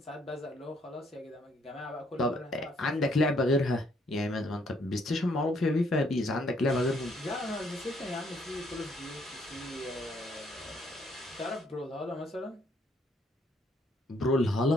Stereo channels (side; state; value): both; normal; correlation 0.68